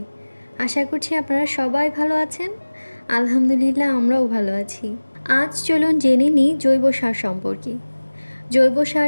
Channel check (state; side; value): inverted; both; correlation -1.00